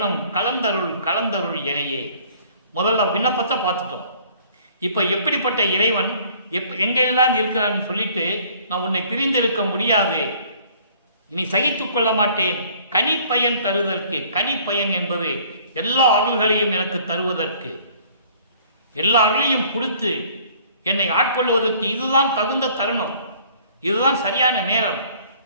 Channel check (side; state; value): both; inverted; correlation -0.56